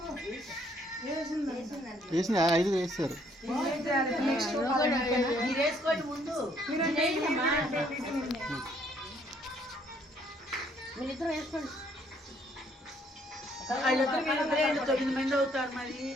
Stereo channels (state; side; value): normal; both; correlation 0.66